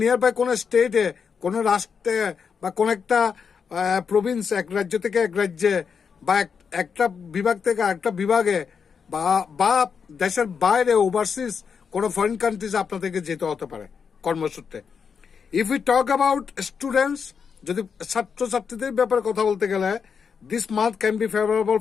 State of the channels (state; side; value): quieter; right; 6.3 dB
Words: বাই কোনো স্টেটে, কোনো রাষ্ট্রে, বা কোন একটা প্রভিন্স, এক রাজ্য থেকে এক রাজ্যে, বা একটা বিভাগ থেকে আরেকটা বিভাগে, বা দেশের বাইরে ওভারসিজ কোনো ফরেন কান্ট্রিজ আপনাদেরকে যেতে হতে পারে কর্মসূত্রে। If you talk about students, যদি ছাত্রছাত্রীদের ব্যাপারে কথা বলতে গেলে, this month can be favourable